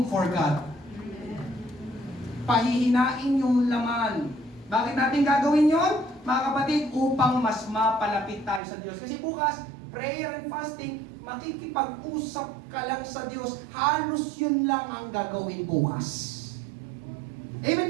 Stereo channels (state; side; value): drops out; left; at 8.6 s